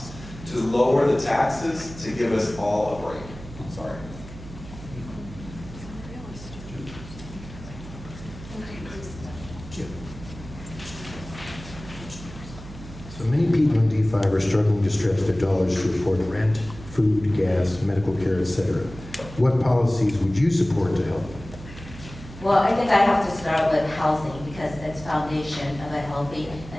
to lower the taxes to give us all a break. Sorry. So many people in D5 are struggling to stretch their dollars to afford rent, food, gas, medical care, etc. What policies would you support to help? Well, I think I have to start with housing, because it's foundation of a healthy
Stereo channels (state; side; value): noise; right; hum, 14 dB below the sound